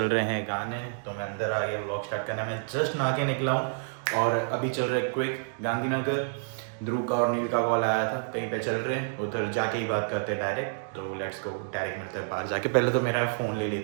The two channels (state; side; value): silent; left; digital silence